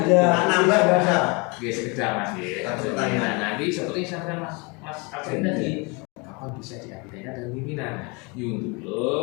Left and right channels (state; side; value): quieter; right; 29.7 dB